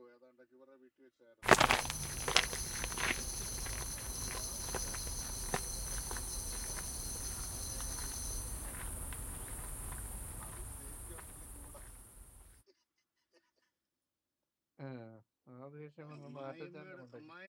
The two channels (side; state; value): both; identical; correlation 1.00